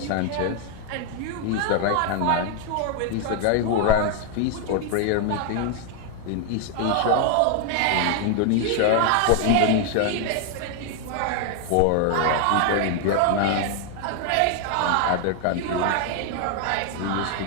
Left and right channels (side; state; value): both; different; correlation 0.00